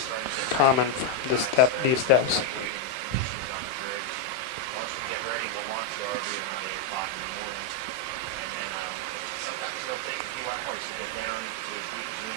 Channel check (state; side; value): late; right; 31 ms